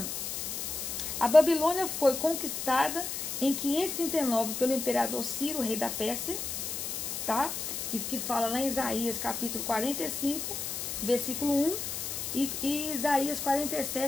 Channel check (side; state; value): left; noise; hiss, 4 dB below the sound